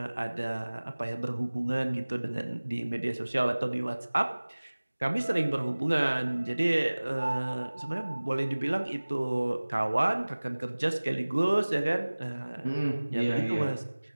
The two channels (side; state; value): both; inverted; correlation -1.00